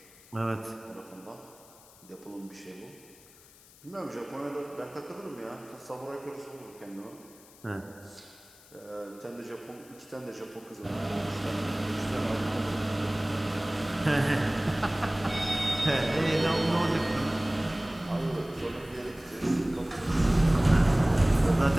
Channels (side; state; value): left; noise; hiss, 24 dB below the sound